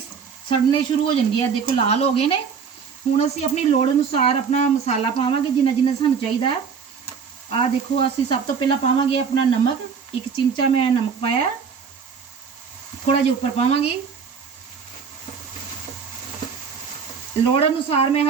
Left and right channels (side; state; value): left; quieter; 6.2 dB